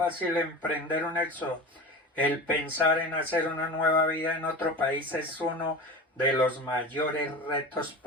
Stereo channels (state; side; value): normal; both; correlation 0.30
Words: emprender un éxodo. El pensar en hacer una nueva vida en otro país es uno de los mayores retos